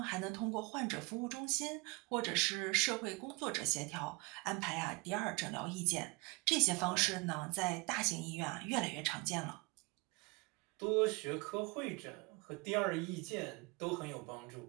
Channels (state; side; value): quieter; left; 27.5 dB